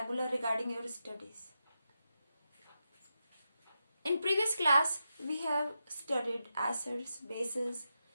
regarding your studies. In previous class, we have studied acids, bases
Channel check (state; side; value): inverted; both; correlation -0.87